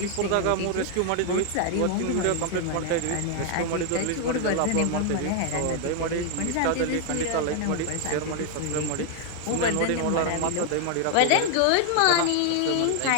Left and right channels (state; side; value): different; both; correlation 0.00